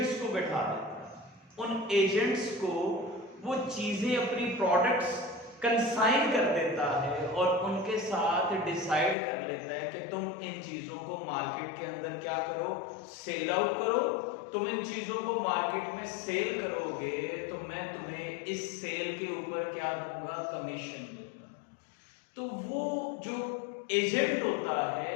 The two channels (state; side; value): drops out; right; at 9.2 s